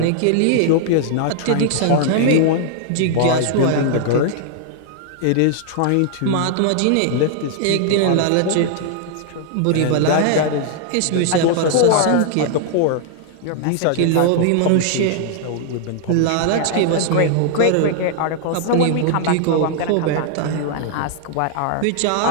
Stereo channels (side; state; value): both; different; correlation 0.00